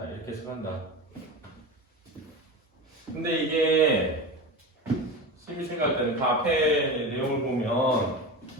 이렇게 해석한다. 근데 이게 심히 생각할 때는 그 앞에 내용을 보면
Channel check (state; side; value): normal; both; correlation 0.26